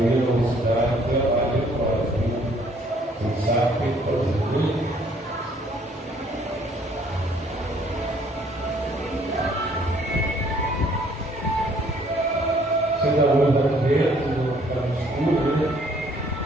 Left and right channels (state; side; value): normal; both; correlation 0.62